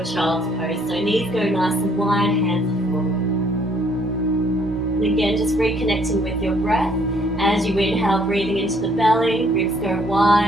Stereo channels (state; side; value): normal; both; correlation 0.64